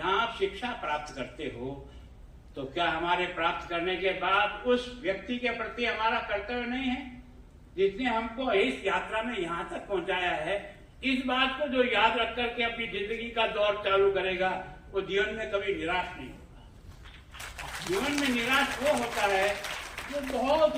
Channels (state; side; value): identical; both; correlation 1.00